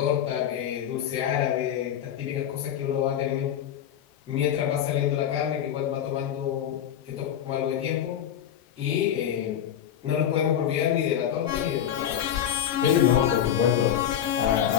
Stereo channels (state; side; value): quieter; right; 9.9 dB